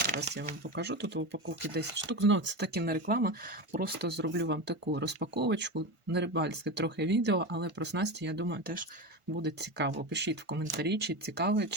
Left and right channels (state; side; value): late; left; 1.5 ms